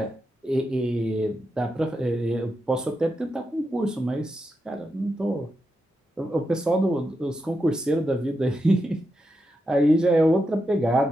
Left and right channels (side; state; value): both; normal; correlation 0.86